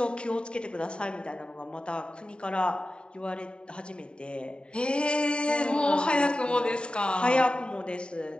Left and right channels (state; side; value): late; right; 0.052 ms